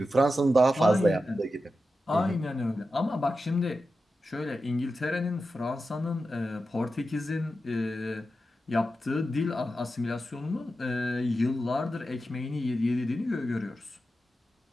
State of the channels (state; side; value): normal; both; correlation 0.91